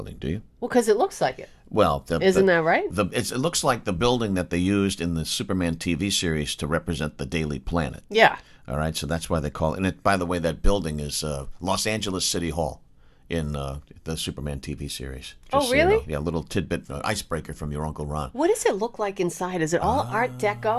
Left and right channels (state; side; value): identical; both; correlation 1.00